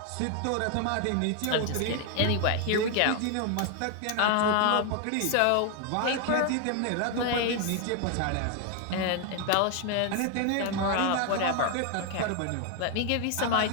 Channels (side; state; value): both; different; correlation 0.01